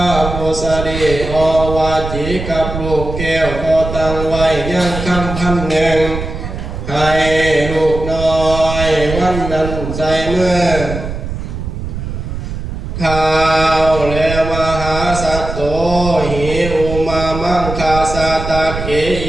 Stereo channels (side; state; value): right; noise; rumble, 7 dB below the sound